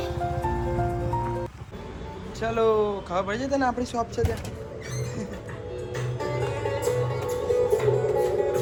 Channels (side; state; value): both; identical; correlation 1.00